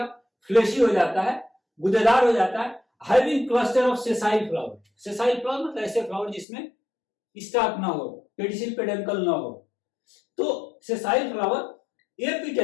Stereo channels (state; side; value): drops out; right; at 6.5 s